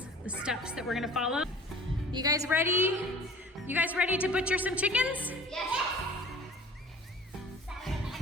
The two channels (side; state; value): both; normal; correlation 0.45